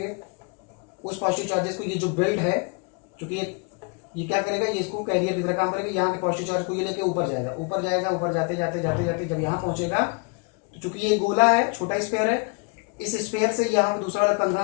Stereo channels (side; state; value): right; quieter; 32.7 dB